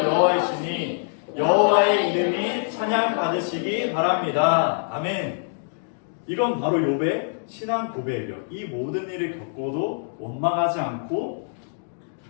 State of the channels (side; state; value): right; silent; digital silence